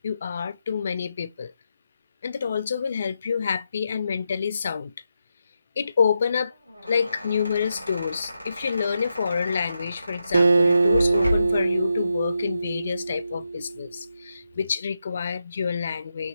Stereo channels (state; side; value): inverted; both; correlation -0.86